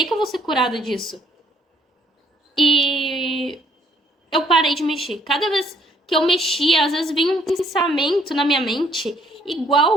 que eu vou ser curada disso. E eu parei de mexer. Cada vez que eu mexia, às vezes vinha um pensamento na minha mente,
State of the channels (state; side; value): normal; both; correlation 0.65